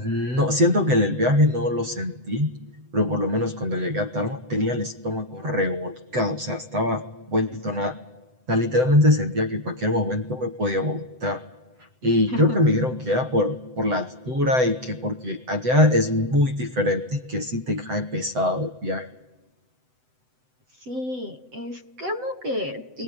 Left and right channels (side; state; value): left; late; 7.9 ms